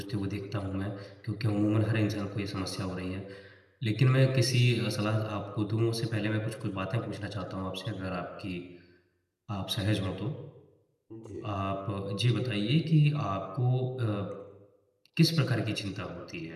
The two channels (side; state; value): both; identical; correlation 1.00